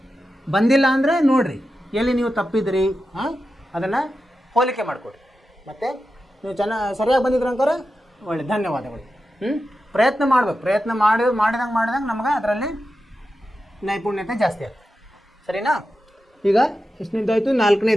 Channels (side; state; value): both; normal; correlation 0.91